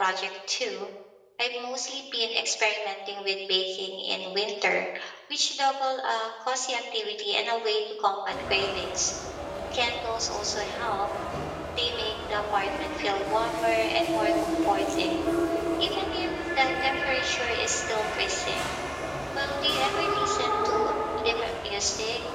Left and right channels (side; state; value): both; identical; correlation 1.00